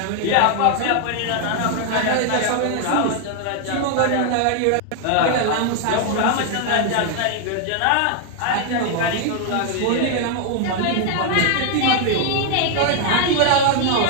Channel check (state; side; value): different; both; correlation 0.00